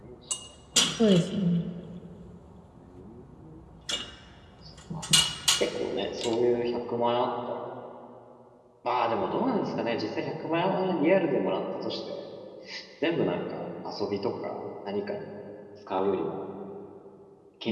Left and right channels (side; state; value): both; identical; correlation 1.00